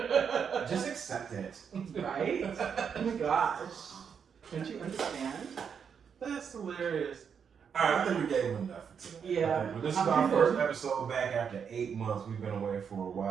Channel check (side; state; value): left; quieter; 7.0 dB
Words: accept it. Right? Oh my gosh. Don't you understand? That's hilarious. Alright, I think we gave him enough for today. Yeah. But this is our first episode back after 8 months. We've been away for a